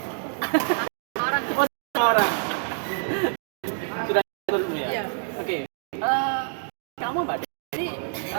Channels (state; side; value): silent; left; 60 dB below the other